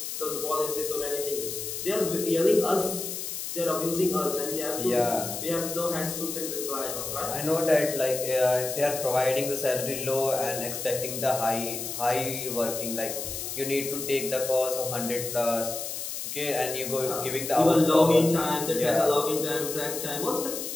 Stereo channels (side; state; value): left; noise; hiss, 6 dB below the sound